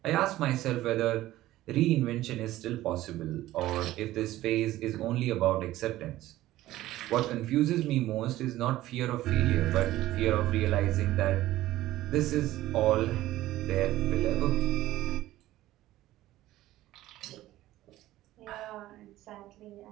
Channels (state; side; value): quieter; left; 15.5 dB